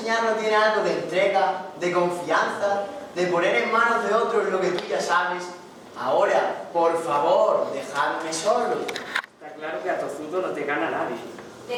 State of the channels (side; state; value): both; identical; correlation 1.00